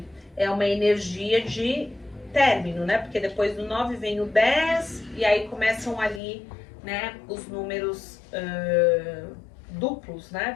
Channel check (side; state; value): right; drops out; at 6.2 s